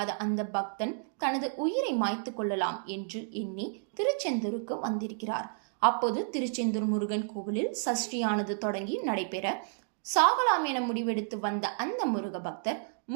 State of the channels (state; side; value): silent; left; digital silence